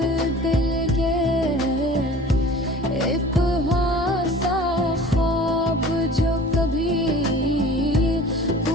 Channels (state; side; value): normal; both; correlation 0.44